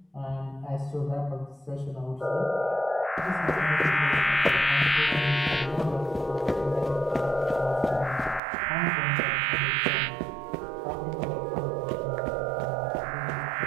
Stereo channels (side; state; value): left; drops out; at 8.4 s